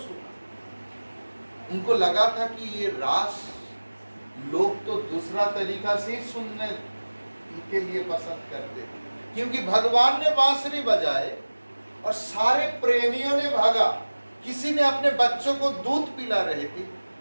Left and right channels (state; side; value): inverted; both; correlation -1.00